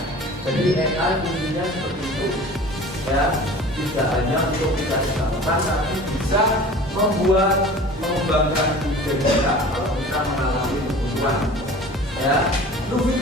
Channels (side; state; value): both; normal; correlation 0.41